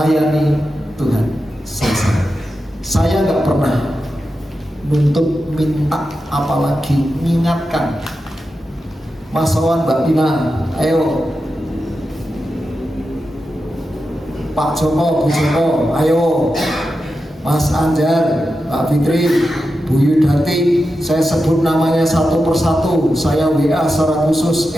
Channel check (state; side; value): normal; both; correlation 0.90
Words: Tuhan selesai. Saya nggak pernah nuntut minta, apalagi mengingatkan. Mas Wawan, Mbak Dina, ayo. Pak Joko, Bu Joko, ayo. Mas Anjar, Mbak Fitri, Bu Yudati, saya sebut namanya satu persatu, saya WA secara khusus.